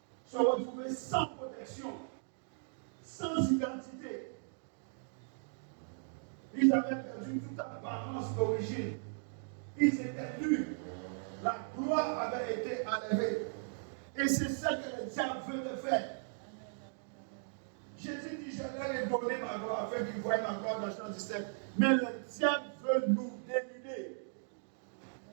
se retrouver sans protection, sans identité. Ils avaient perdu toute apparence d'origine. Ils étaient nus. La gloire avait été enlevée. Et c'est ça que le diable veut te faire. Jésus dit, je leur ai donné ma gloire afin qu'ils voient ma gloire dans Jean 17. Mais le diable veut nous dénuder.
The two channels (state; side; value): silent; left; digital silence